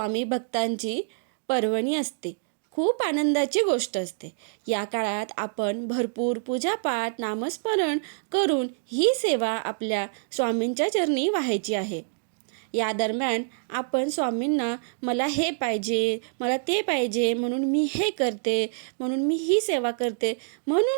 भक्तांची पर्वणी असते. खूप आनंदाची गोष्ट असते. या काळात आपण भरपूर पूजापाठ, नामस्मरण करून ही सेवा आपल्या स्वामींच्या चरणी वाहायची आहे. या दरम्यान आपण स्वामींना मला हे पाहिजे, मला ते पाहिजे म्हणून मी हे करते, म्हणून मी ही सेवा करते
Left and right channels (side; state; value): left; silent; digital silence